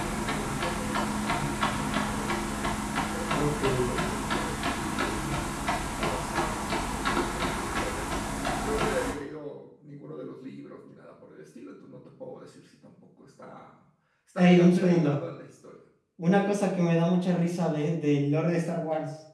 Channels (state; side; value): identical; both; correlation 1.00